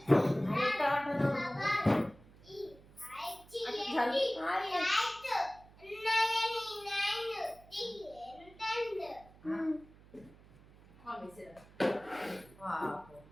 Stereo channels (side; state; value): right; noise; hum, 24 dB below the sound